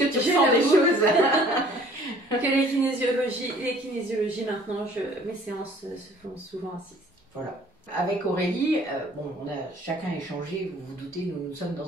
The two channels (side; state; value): both; normal; correlation 0.54